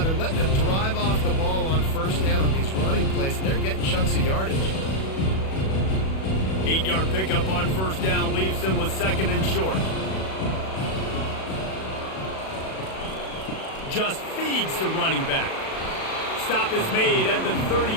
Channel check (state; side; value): late; right; 37 ms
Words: they're letting them drive off the ball on first down on these running plays, and they're getting chunks of yardage. 8-yard pickup on first down leaves them with 2nd and short. Just feeds the running back. Stop is made at the